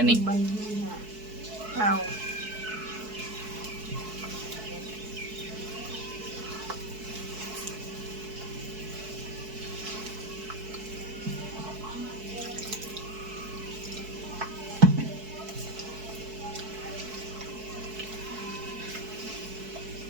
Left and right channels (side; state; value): left; late; 4.6 ms